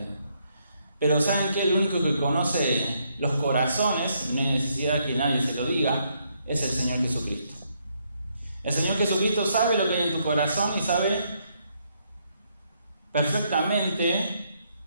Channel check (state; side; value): inverted; both; correlation -0.74